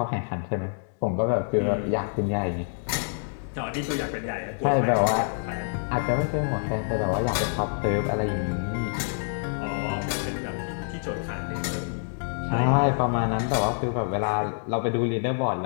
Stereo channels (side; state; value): right; silent; digital silence